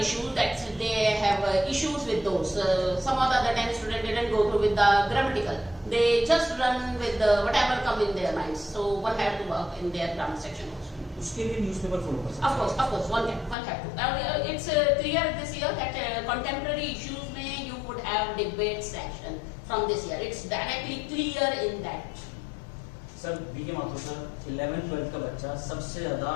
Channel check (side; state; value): right; drops out; at 13.6 s